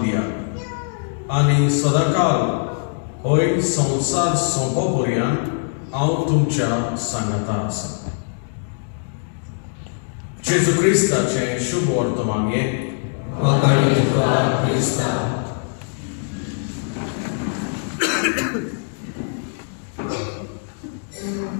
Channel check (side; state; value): right; silent; digital silence